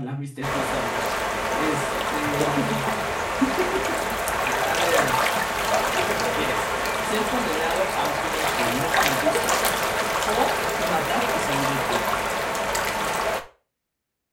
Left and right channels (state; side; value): identical; both; correlation 1.00